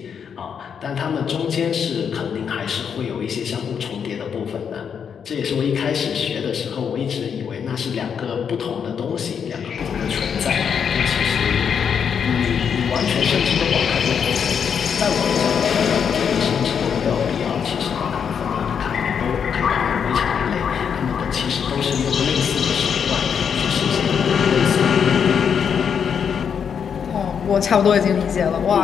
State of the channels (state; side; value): quieter; right; 7.3 dB